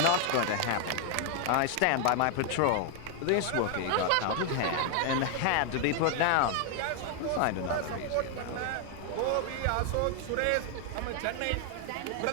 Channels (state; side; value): different; both; correlation 0.00